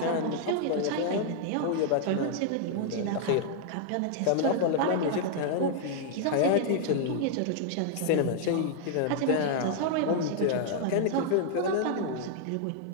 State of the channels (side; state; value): both; different; correlation 0.00